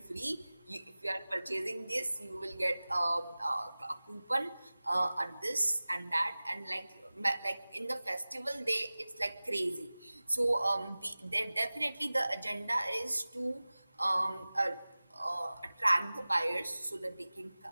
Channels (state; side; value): inverted; both; correlation -0.98